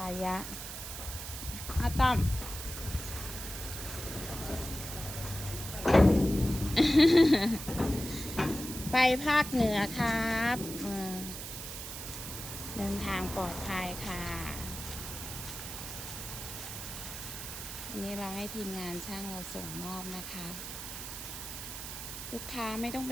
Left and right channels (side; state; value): right; noise; hiss, 8 dB below the sound